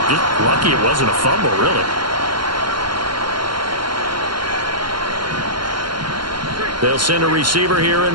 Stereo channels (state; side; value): late; left; 0.72 ms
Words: Just lucky it wasn't a fumble, really. They'll send a receiver here in